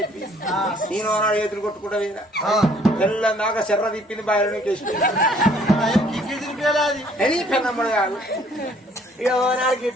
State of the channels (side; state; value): both; normal; correlation 0.60